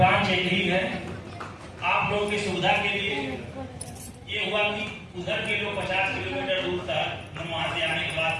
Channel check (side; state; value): both; identical; correlation 1.00